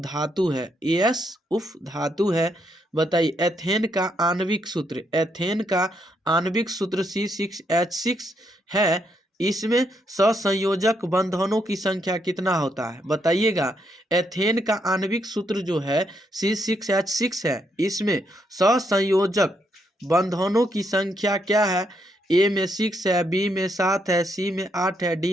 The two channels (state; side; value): normal; both; correlation 0.77